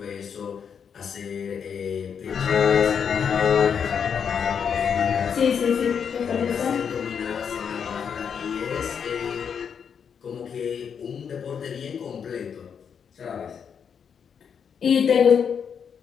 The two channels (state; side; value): quieter; right; 7.2 dB